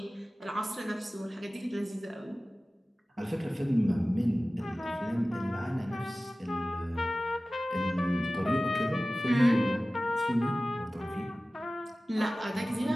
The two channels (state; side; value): normal; both; correlation 0.96